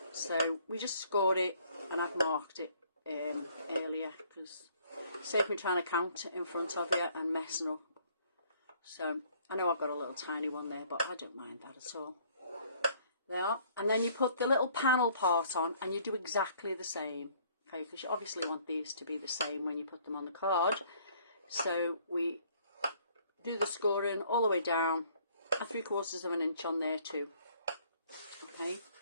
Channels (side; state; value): both; inverted; correlation -0.60